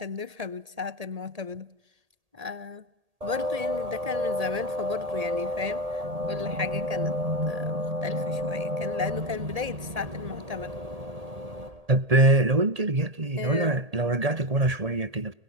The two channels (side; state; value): left; late; 1.8 ms